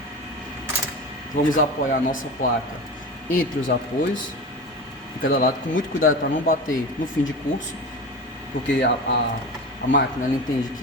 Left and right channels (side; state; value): both; normal; correlation 0.28